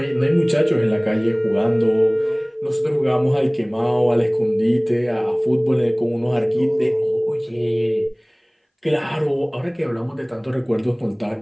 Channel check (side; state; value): both; identical; correlation 1.00